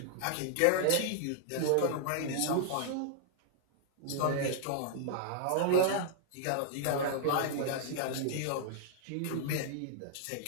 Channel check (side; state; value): both; different; correlation -0.01